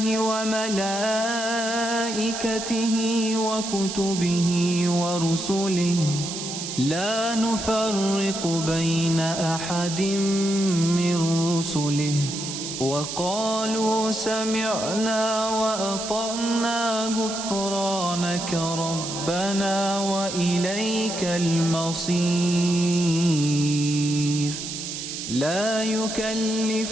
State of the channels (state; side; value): noise; right; hiss, 6 dB below the sound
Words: وملائكته وكتبه ورسله لا نفرق بين أحد من رسله وقالوا سمعنا وأطعنا غفرانك ربنا وإليك المصير. لا